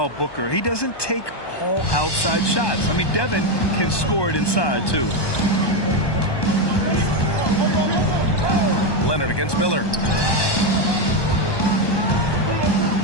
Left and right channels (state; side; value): late; right; 1.2 ms